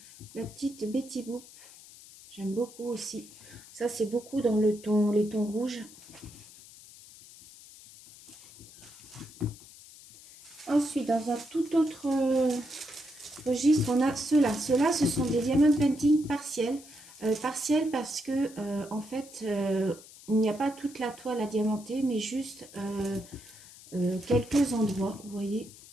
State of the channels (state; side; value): noise; left; hiss, 20 dB below the sound